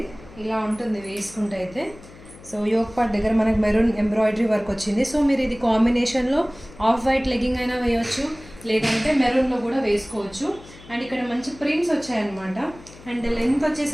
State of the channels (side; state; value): left; noise; hum, 20 dB below the sound